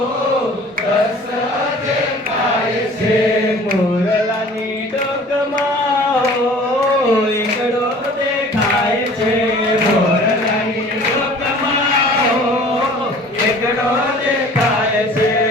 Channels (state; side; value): normal; both; correlation 0.47